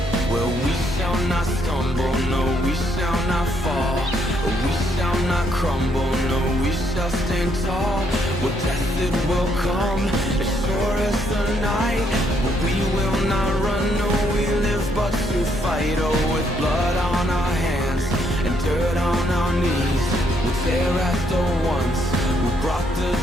Well, we shall not stumble, no, we shall not fall. We shall not crumble, no, we shall stand tall. Well, death it will come, as sure as the night. But we will not run, no, we live but to fight. Oh, with blood on our hands and dirt on our knees, we'll tear at the ones who brought the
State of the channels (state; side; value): normal; both; correlation 0.72